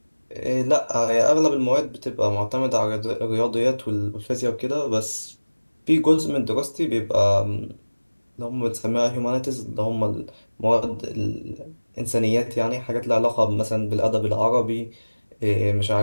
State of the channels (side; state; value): both; inverted; correlation -1.00